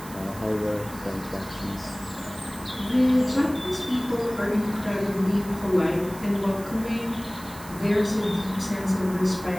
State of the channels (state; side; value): noise; right; hiss, 17 dB below the sound